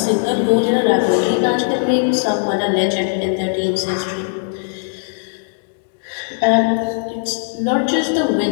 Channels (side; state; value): right; silent; 67 dB below the other